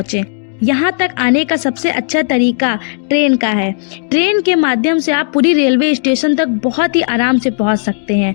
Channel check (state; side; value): silent; right; digital silence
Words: यहाँ तक आने का सबसे अच्छा तरीका ट्रेन का है। ट्रेन के माध्यम से आप पुरी रेलवे स्टेशन तक बहुत ही आराम से पहुँच सकते हैं।